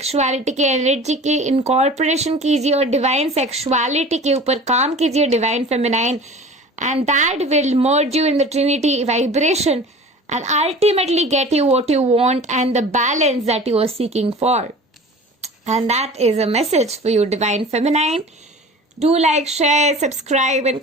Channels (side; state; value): both; normal; correlation 0.40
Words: के एनर्जी की इनकॉर्पोरेशन कीजिए और डिवाइन सेक्सुअलिटी के ऊपर काम कीजिए, divine feminine, and that will merge you in the Trinity vibration and ultimately get you what you want and the balance that you are seeking for. And that is a message for you, Divine Feminine. Do like, share, subscribe and